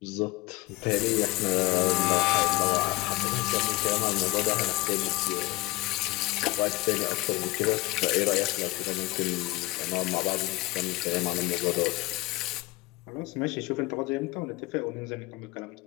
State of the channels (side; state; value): right; quieter; 20.6 dB